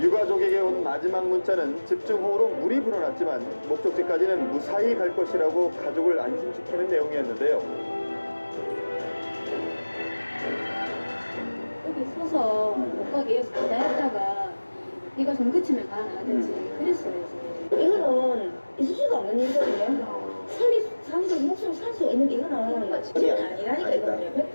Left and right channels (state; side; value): inverted; both; correlation -1.00